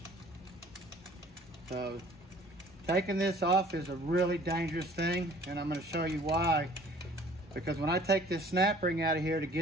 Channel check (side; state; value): both; normal; correlation 0.53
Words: So taking this off is a really dangerous thing, and I'm going to show you why. Because when I take this snap ring out of here to